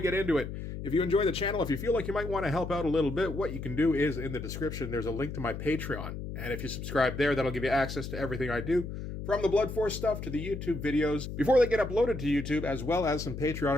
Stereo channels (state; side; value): noise; left; hum, 7 dB below the sound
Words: into it, if you enjoy the channel, if you feel like you might want to help out a little bit, what you can do is in the description, there's a link to my Patreon. And if you subscribe there, that'll give you access to everything I do, from the Blood Force stuff to the YouTube videos, before they get uploaded to YouTube, as well as some